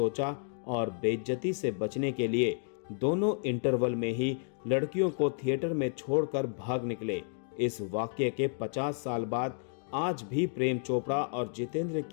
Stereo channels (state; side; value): silent; right; 57 dB below the other